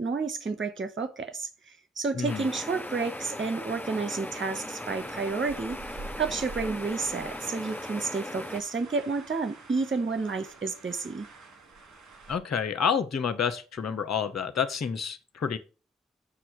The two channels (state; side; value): normal; both; correlation 0.52